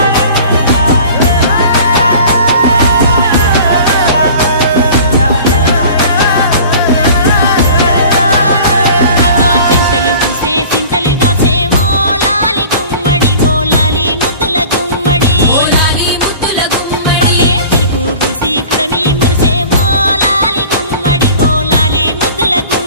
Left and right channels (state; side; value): inverted; both; correlation -0.43